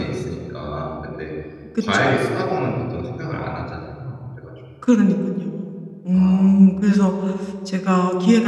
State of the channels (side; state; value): both; identical; correlation 1.00